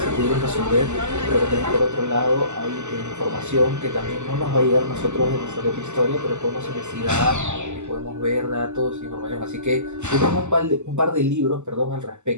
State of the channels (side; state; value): left; late; 0.83 ms